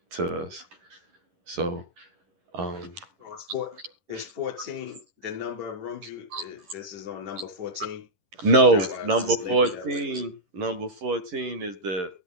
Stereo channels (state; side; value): late; left; 11 ms